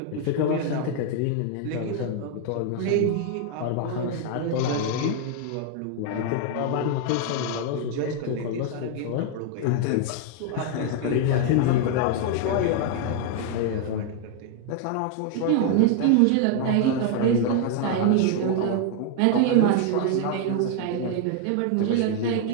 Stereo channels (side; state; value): both; different; correlation 0.00